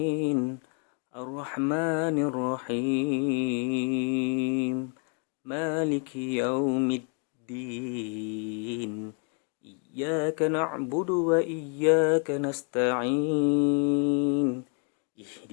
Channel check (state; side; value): quieter; right; 38.7 dB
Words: الرحمن الرحيم مالك يوم الدين إياك نعبد وإياك نستعين